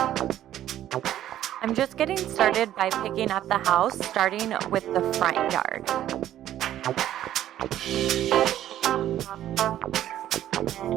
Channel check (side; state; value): left; quieter; 12.3 dB